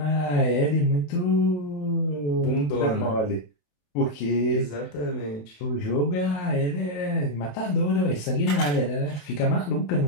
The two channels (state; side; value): late; right; 27 ms